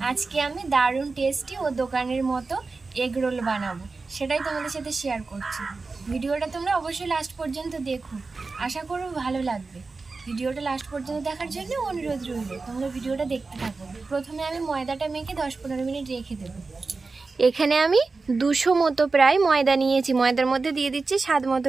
আজকে আমি দারুণ টেস্টি ও দোকানের মতো এগ রোল বানাবো, সেটাই তোমাদের সাথে শেয়ার করছি। ভিডিওটা তোমরা অবশ্যই লাস্ট পর্যন্ত দেখো, আশা করব ভালো লাগবে। ভিডিওটা লাস্ট পর্যন্ত দেখার জন্য অনুরোধ রইল, তোমরা ভিডিওটা দেখতে থাকো। প্রথমে আমি ময়দাটা মেখে 10-15 মিনিট রেখে দেবো। এখানে আমি 200 মতো প্রায় ময়দা নিয়েছি। ময়দার মধ্যে দিয়ে দিচ্ছি স্বাদ মতো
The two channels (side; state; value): left; quieter; 4.0 dB